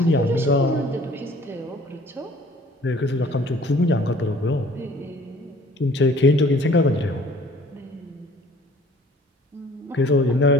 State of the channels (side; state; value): both; normal; correlation 0.53